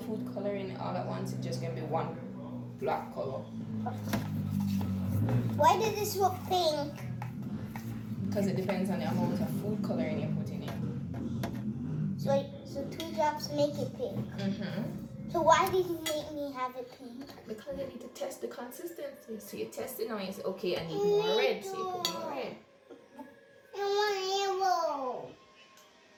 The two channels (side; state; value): both; identical; correlation 1.00